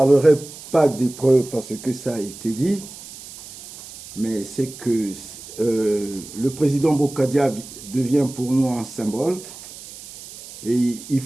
pas des preuves parce que ça a été dit, mais c'est que le président Bokadia devient pour nous un symbole et il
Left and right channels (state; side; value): noise; right; hiss, 15 dB below the sound